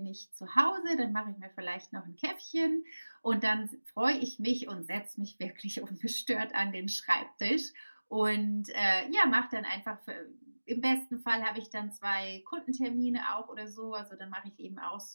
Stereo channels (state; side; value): inverted; both; correlation -1.00